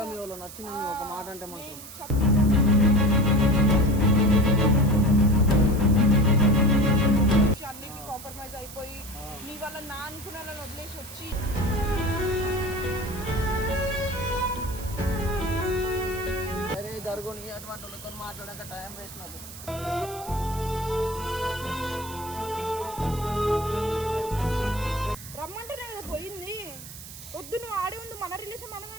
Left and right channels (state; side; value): noise; right; hiss, 14 dB below the sound